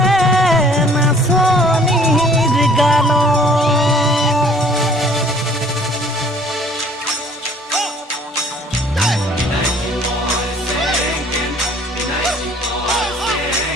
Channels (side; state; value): both; normal; correlation 0.55